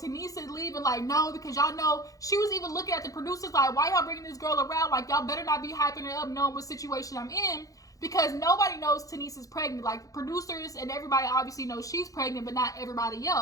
Tanice is leaving like, no, because y'all know, she was even looking at the producers like, why y'all bringing this girl around? Like, y'all better not be hyping her up knowing what situation I'm in, because nobody knows Tanice is pregnant. Like, producers and everybody obviously knows she's pregnant, but not everybody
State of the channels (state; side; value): late; right; 0.17 ms